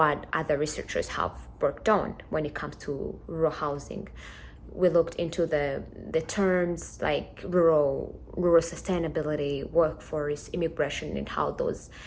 other researchers have worked on when it comes to rural housing. We looked into the terms like rural sustainability, workforce, immigration, and how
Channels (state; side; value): identical; both; correlation 1.00